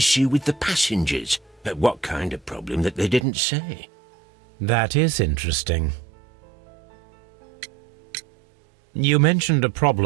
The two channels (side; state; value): left; drops out; at 3.2 s